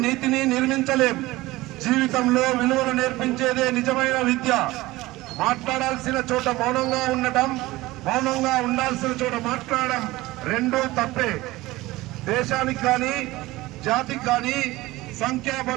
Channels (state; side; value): quieter; left; 19.0 dB